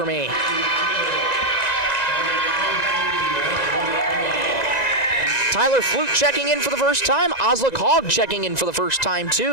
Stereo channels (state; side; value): late; right; 1.9 ms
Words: me." Tyler Flute checking in for the first time. Oslick Hogg checking in for the first time,